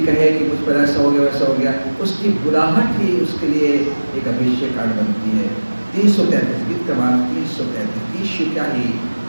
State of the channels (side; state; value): both; inverted; correlation -1.00